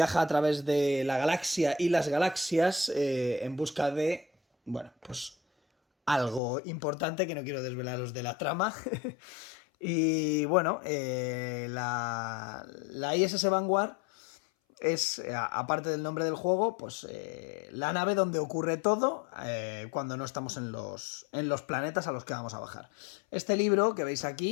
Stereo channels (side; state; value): right; drops out; at 6.4 s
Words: a través de la galaxia y las galaxias en busca de, bueno, pues algo importante que no quiero desvelaros de la trama. Y bueno, la ISS Vanguard es, aparte del nombre del juego, pues la nave donde ocurre todo cuando no estamos en los planetas a los que vamos a bajar. Este libro que veis